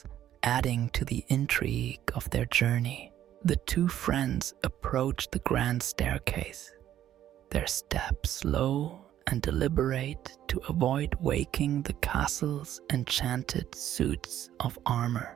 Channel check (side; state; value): left; quieter; 11.6 dB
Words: adding to the intrigue of their journey. The two friends approached the grand staircase, their steps low and deliberate to avoid waking the castle's enchanted suits of